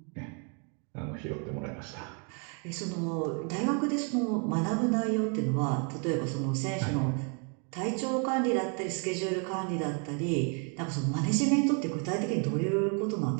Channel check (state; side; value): quieter; left; 38.1 dB